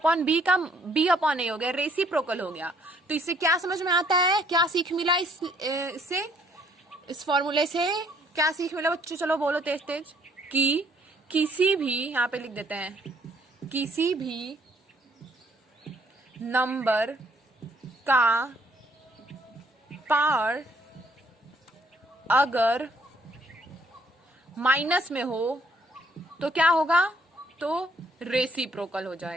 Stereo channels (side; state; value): both; normal; correlation 0.65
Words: का B/A हो गया, रेसिप्रोकल हो गया। तो इससे क्या समझ में आता है, क्या सीख मिला इससे, इस फॉर्मूले से क्या सीख मिला बच्चों, चलो बोलो तेज तेज, कि किसी भी, यहाँ पे लिख देते हैं, किसी भी नंबर का पावर अगर माइनस में हो तो क्या होगा, तो रेसिप्रोकल हो